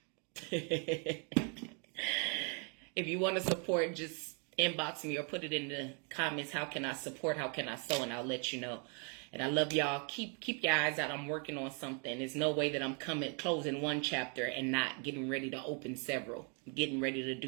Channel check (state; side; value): quieter; left; 38.2 dB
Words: If you want to support, just inbox me or put it in the comments. How can I support? How can I sow? And I'll let you know. And I love y'all. Keep your eyes out. I'm working on something. There's no way that I'm closing one chapter and not getting ready to open several. I'm getting ready to